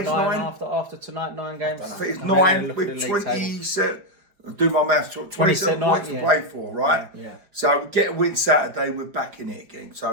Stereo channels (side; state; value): left; late; 4.9 ms